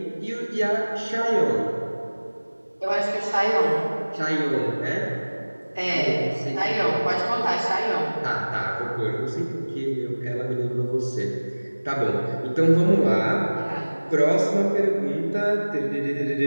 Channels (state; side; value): inverted; both; correlation -1.00